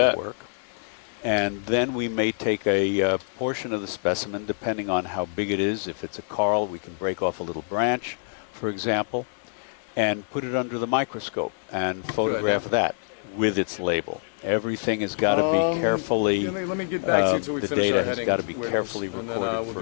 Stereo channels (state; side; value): silent; right; 56 dB below the other